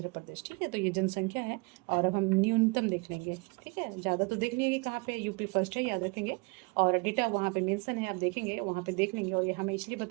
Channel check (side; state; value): left; quieter; 29.9 dB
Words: प्रदेश। ठीक है, तो ये जनसंख्या है, और अब हम न्यूनतम देख लेंगे। ठीक है, ज़्यादा तो देख लेंगे कहाँ पे, यूपी फर्स्ट है, याद रखेंगे, और डेटा वहाँ पे मेंशन है, आप देखेंगे वहाँ पे देख लेंगे, और ये हमें इसलिए